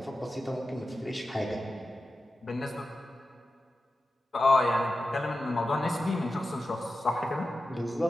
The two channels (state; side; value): normal; both; correlation 0.93